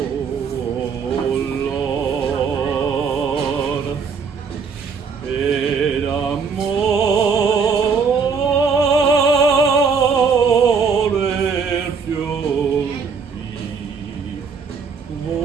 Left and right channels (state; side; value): quieter; left; 5.6 dB